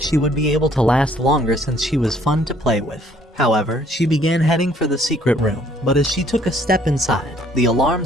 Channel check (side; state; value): both; normal; correlation 0.62